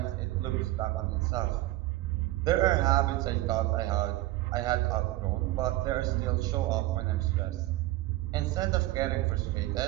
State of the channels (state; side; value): quieter; left; 17.3 dB